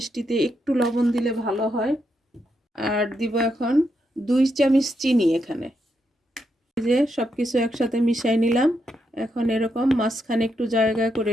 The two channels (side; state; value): both; normal; correlation 0.81